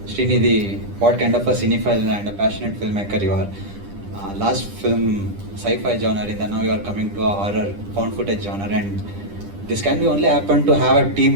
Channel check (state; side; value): late; left; 10 ms